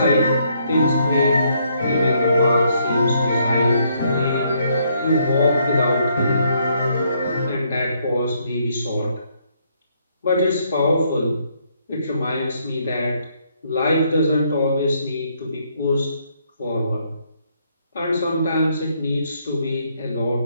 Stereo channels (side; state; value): both; inverted; correlation -0.71